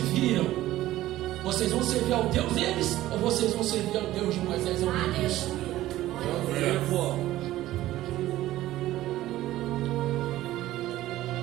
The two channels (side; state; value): left; quieter; 15.2 dB